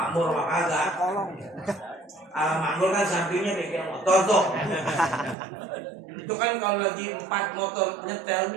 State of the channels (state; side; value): drops out; left; at 5.4 s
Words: kagak. Al-Makmur kan sampingnya bengkel motor tuh. Itu kan kalau lagi 4 motor nyetel